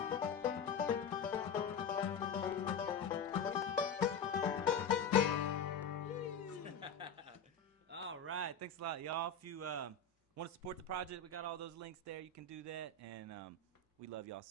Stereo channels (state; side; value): quieter; right; 5.2 dB